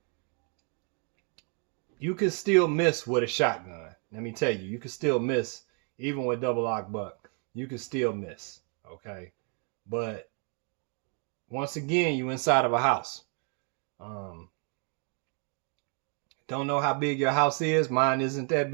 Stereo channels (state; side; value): quieter; left; 38.3 dB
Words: you can still miss with a shotgun. Let me tell you, you can still miss even with double lock buck. You can still miss, okay? But once again, you inside of a house. Don't know how big your house is. Mine isn't that